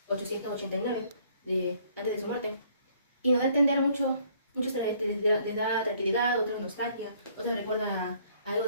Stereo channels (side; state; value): both; inverted; correlation -0.62